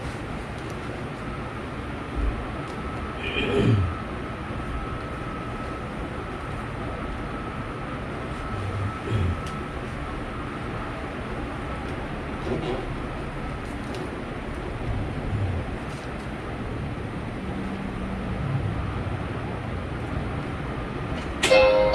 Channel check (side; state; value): both; identical; correlation 1.00